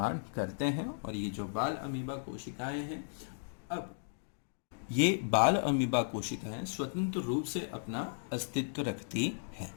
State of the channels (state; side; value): silent; right; digital silence